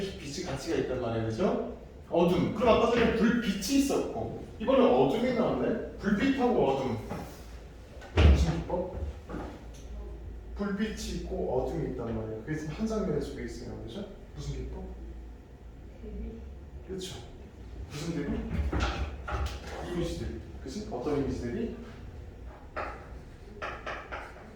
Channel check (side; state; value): both; identical; correlation 1.00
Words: 빛이 가치가 있단 말이에요, 그렇죠? 어둠. 그럼 아까 전에 불빛이 있었고 이번엔 어둠이 나왔네. 불빛하고 어둠. 무슨 기법? 불빛이 있고 어둠이 있단 말이에요. 그게 지금 한 장면 속에 있어요, 그렇죠? 무슨 기법? 그렇죠. 무슨 대비? 이미지들. 그치? 어떤 이미지들이?